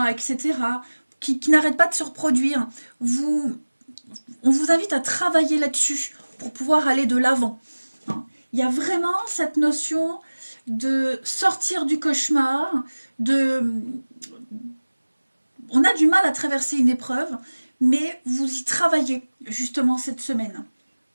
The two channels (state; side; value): inverted; both; correlation -1.00